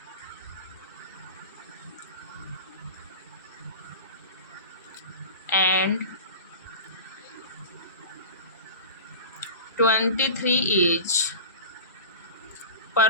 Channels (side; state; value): both; inverted; correlation -0.33